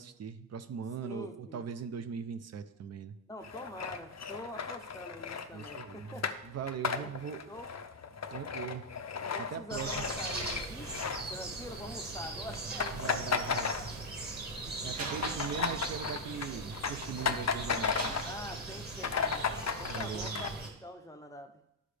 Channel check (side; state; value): both; normal; correlation -0.02